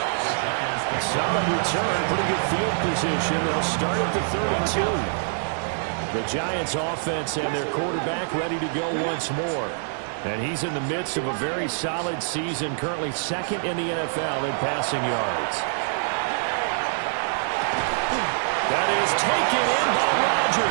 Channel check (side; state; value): left; silent; digital silence